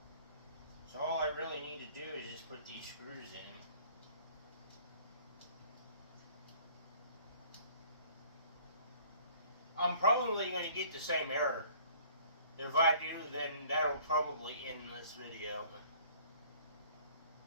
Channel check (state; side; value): inverted; both; correlation -0.54